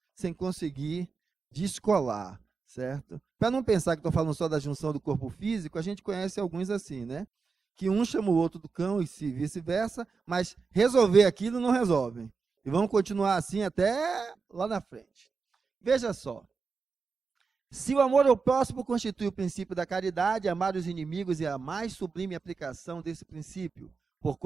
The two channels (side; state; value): left; quieter; 4.9 dB